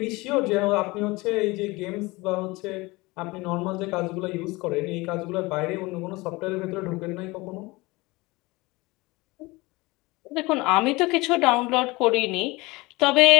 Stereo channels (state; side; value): quieter; right; 22.7 dB